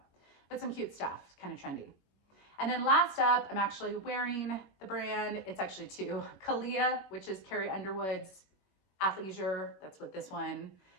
but some cute stuff, kind of trendy. And then last up, I'm actually wearing the brand. It's actually two, Kalia, which is Carrie Underwood's athleisure. That's what this one,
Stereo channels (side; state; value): right; late; 21 ms